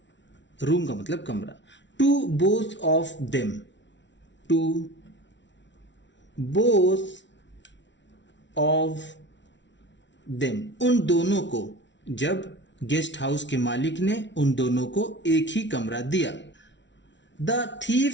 रूम का मतलब कमरा। To both of them, to both of them, उन दोनों को। जब गेस्ट हाउस के मालिक ने उन दोनों को एक ही कमरा दिया। The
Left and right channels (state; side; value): late; right; 0.52 ms